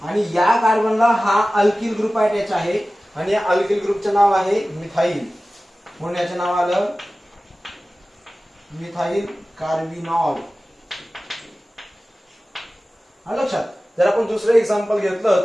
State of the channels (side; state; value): both; normal; correlation 0.96